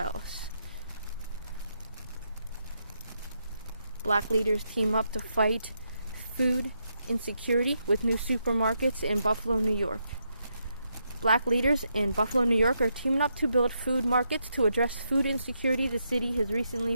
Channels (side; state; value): both; inverted; correlation -0.81